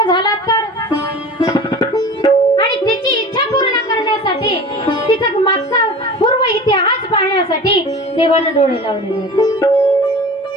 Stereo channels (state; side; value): normal; both; correlation 0.37